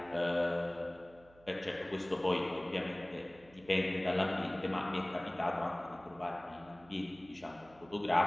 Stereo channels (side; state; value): right; noise; hum, 26 dB below the sound